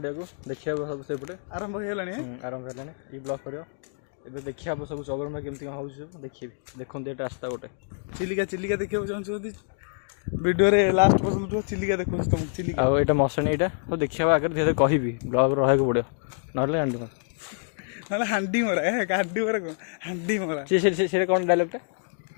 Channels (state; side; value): silent; right; 60 dB below the other